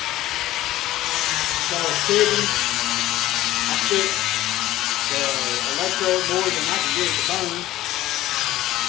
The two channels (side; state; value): right; quieter; 15.3 dB